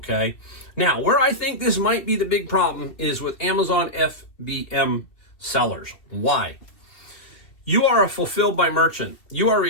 Now, where I think this might be the big problem is with Amazon FBM sellers. Why? You are a fulfilled by merchant. You are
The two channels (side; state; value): right; late; 2.5 ms